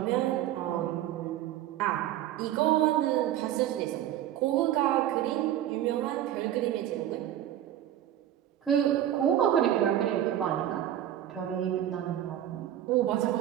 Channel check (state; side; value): quieter; left; 11.9 dB